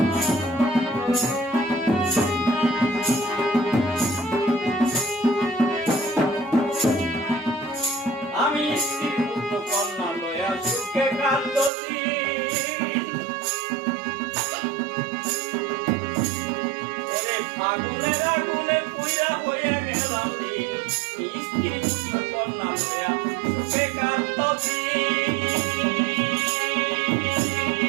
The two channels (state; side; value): drops out; left; at 11.7 s